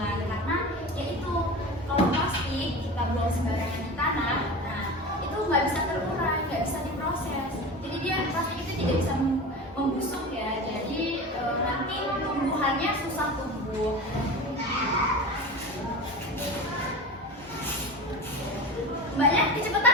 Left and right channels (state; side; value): normal; both; correlation 0.30